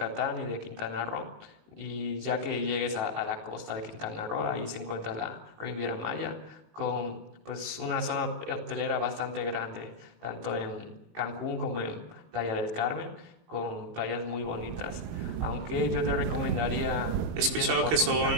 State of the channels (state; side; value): late; left; 19 ms